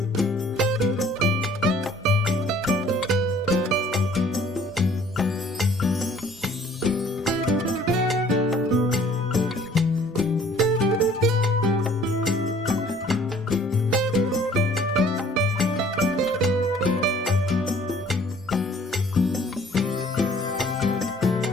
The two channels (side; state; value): both; normal; correlation 0.55